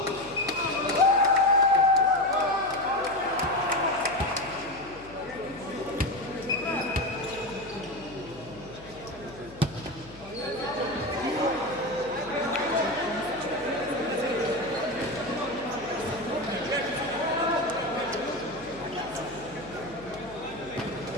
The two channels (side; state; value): left; noise; hum, 20 dB below the sound